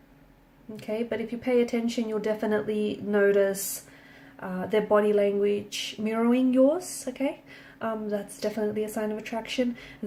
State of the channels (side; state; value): both; identical; correlation 1.00